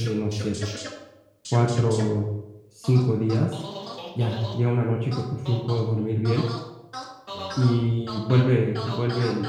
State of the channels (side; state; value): both; identical; correlation 1.00